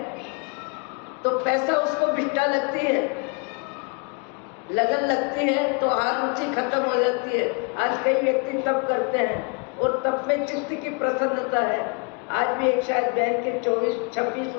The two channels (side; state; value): right; quieter; 34.7 dB